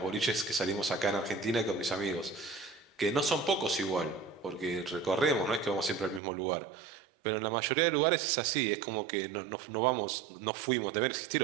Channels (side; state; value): left; drops out; at 6.2 s